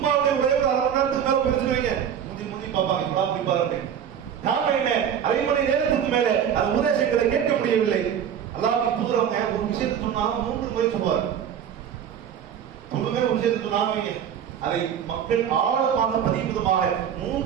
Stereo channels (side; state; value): left; quieter; 8.7 dB